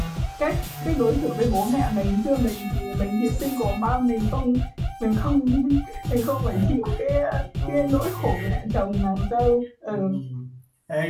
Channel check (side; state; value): both; identical; correlation 1.00